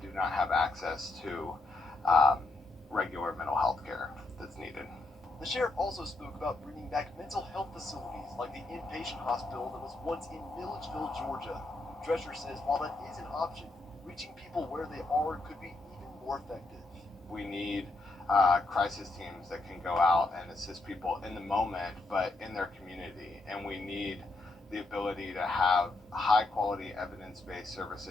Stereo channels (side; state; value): right; quieter; 3.1 dB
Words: do not have access to regular mental health care that's needed. The sheriff also spoke about bringing back mental health facilities like the inpatient hospital that was once in Milledgeville, Georgia. Drescher says while that is an option, reaching people where they are could be even more effective. We need crisis teams that can go out and assist people in the moment, but in their community. And we need the ability to have high-quality, evidence-based